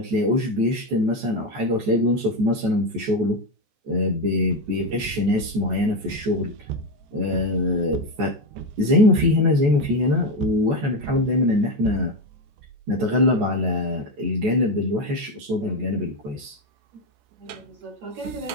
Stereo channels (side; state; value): left; late; 14 ms